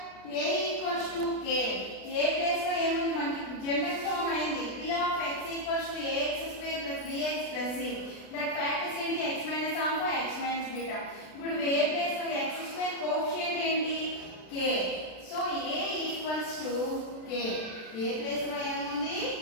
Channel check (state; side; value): late; right; 36 ms